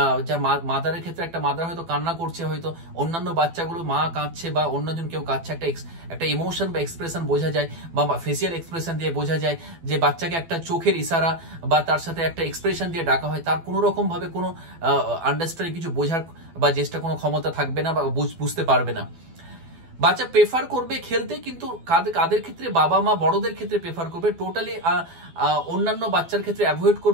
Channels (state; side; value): late; left; 12 ms